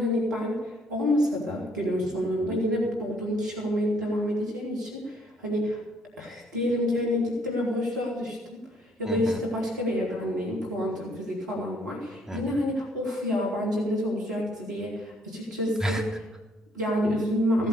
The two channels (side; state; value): both; normal; correlation 0.66